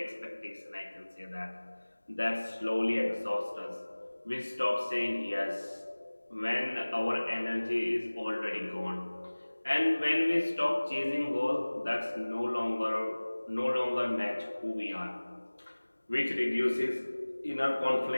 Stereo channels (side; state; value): both; inverted; correlation -1.00